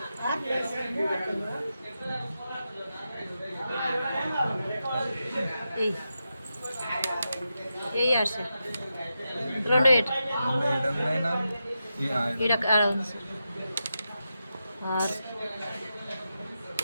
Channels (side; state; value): both; inverted; correlation -0.88